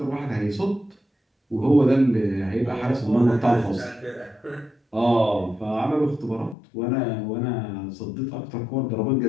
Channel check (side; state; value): right; drops out; at 6.6 s